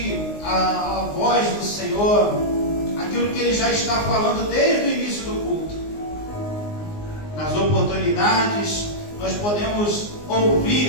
a voz do Senhor, aquilo que ele já está falando desde o início do culto. Nas oportunidades nós podemos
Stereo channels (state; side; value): late; right; 19 ms